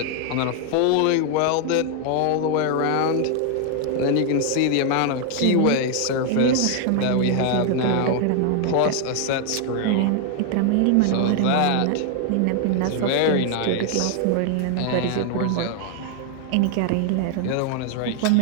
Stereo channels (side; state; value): both; different; correlation 0.00